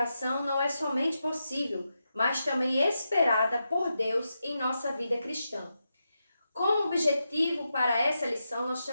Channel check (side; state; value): both; inverted; correlation -0.87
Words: não é somente possível, mas também esperada por Deus em nossa vida cristã. Como objetivo para essa lição, nós